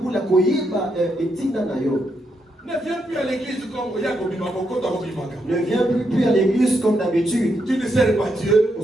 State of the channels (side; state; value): both; normal; correlation 0.80